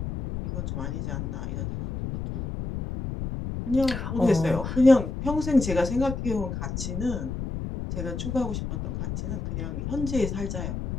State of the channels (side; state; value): left; noise; rumble, 4 dB below the sound